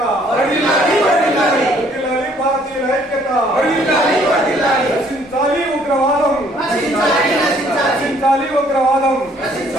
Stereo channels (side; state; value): both; normal; correlation 0.62